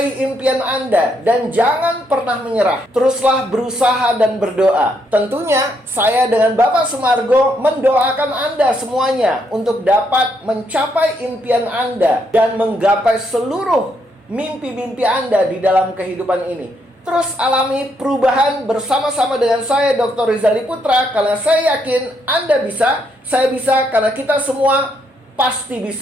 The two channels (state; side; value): normal; both; correlation 0.75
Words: impian Anda dan jangan pernah menyerah. Teruslah berusaha dan berdoa. Tentunya saya dengan Bapak Sumargo mendoakan Anda semuanya untuk dapat mencapai impian Anda dan menggapai seluruh mimpi-mimpi Anda di dalam kehidupan ini. Terus alami perubahan bersama-sama dengan saya, Dr. Rizali Putra, karena saya yakin Anda bisa, saya bisa, karena kita semua pasti